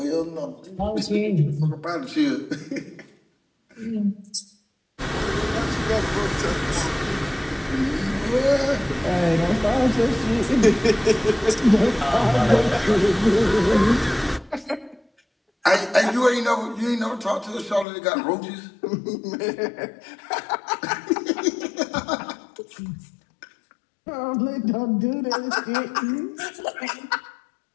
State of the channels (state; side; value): drops out; right; at 17.9 s